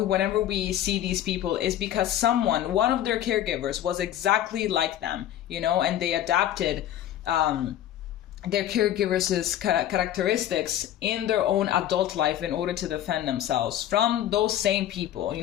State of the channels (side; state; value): right; quieter; 11.8 dB